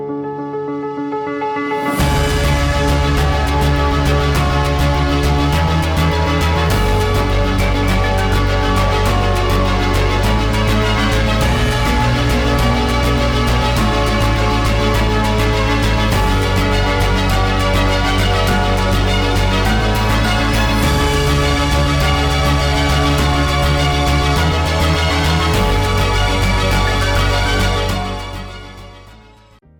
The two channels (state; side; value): identical; both; correlation 1.00